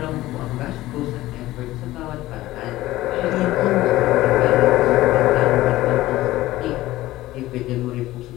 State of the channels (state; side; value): quieter; right; 16.6 dB